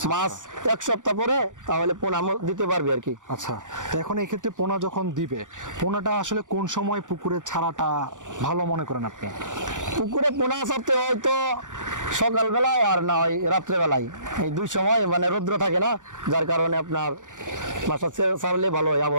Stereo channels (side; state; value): left; late; 0.87 ms